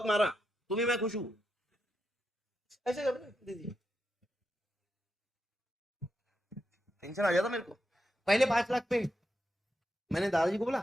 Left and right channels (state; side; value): normal; both; correlation 0.85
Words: मारा, तुम्हें मैं खुश हूँ, ऐसे कर दीदी, टेंशन आ जाता मेरे को। पहले 5 लाख पे मैंने दादाजी को बोला